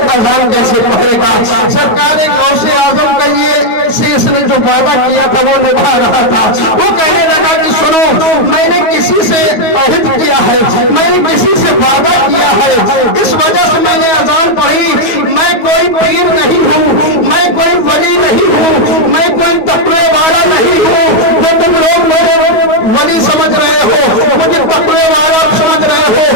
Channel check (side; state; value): right; late; 9.4 ms